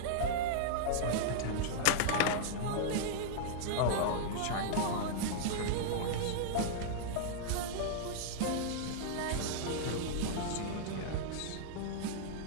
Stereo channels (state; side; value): different; both; correlation -0.02